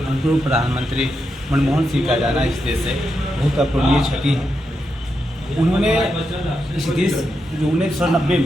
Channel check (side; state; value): both; normal; correlation 0.85